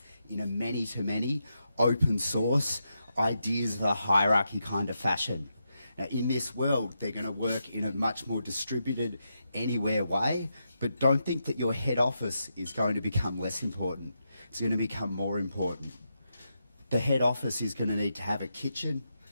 in a many-to-many, open source, ideas of a hierarchy kind of fashion. Now, in this world, they're going to work in a much more distributed, anywhere way, but don't think that your head office is going to become less important. It's going to become more important. The head office is going to need to have a kitchen,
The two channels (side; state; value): both; inverted; correlation -0.85